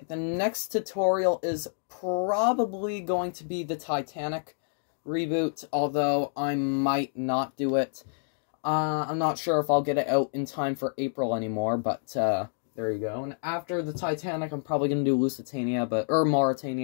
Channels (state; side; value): silent; right; digital silence